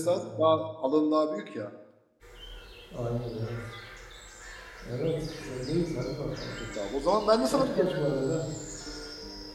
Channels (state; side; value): identical; both; correlation 1.00